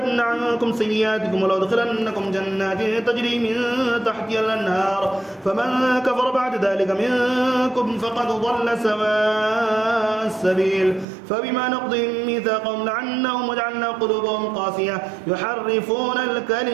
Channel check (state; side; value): drops out; left; at 11.1 s